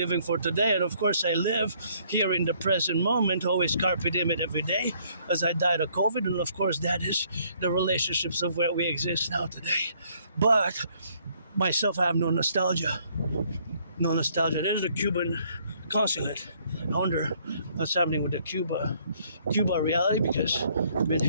for today, and of course I live here in the present moment, always carpe diem every day, as I died of COVID, and of course that is the relationships of where we exist now today. But myself, I have no nostalgia. No nostalgia. There's the Cuban consulate. I wonder what's happening with the Cuba reality, because I've been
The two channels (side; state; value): both; inverted; correlation -0.65